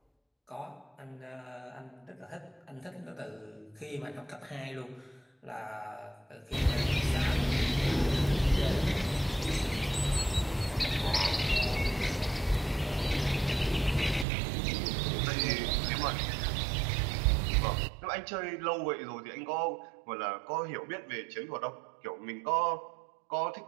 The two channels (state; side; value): drops out; left; at 14.2 s